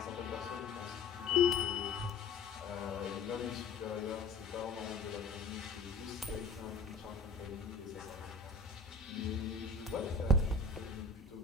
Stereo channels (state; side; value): quieter; right; 3.6 dB